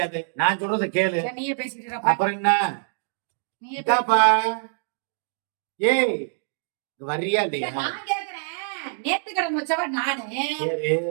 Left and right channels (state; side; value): silent; left; digital silence